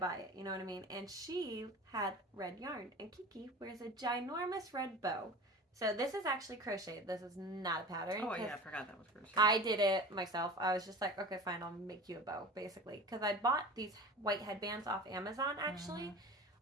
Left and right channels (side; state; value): both; normal; correlation 0.35